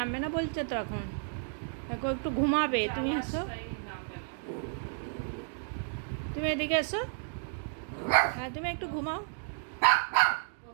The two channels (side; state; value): left; silent; digital silence